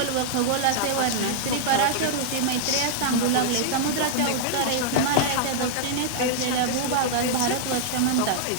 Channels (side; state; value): both; different; correlation -0.01